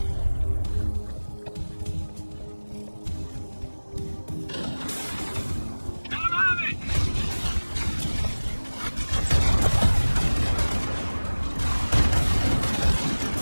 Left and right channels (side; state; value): both; inverted; correlation -1.00